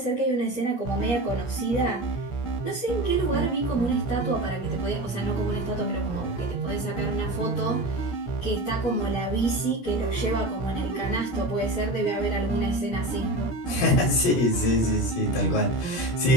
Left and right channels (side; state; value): right; late; 17 ms